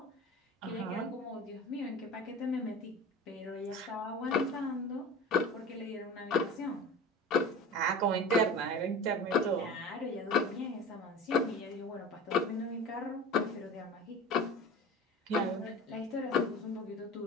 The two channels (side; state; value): both; normal; correlation 0.35